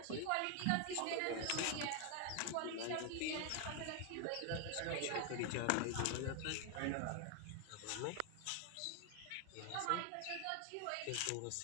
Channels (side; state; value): both; different; correlation 0.00